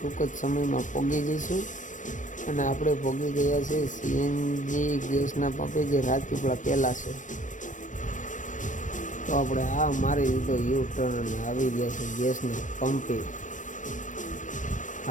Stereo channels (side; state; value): right; late; 0.37 ms